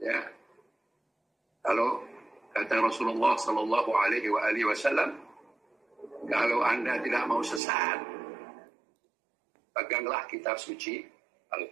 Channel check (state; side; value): drops out; left; at 7.6 s